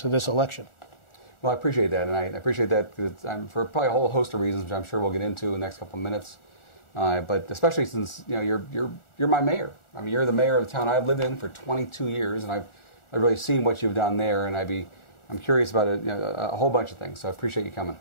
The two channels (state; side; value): late; right; 1.4 ms